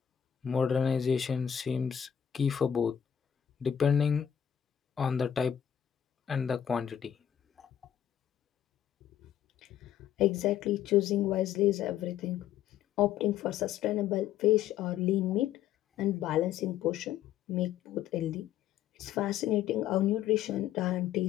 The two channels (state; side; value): quieter; right; 9.9 dB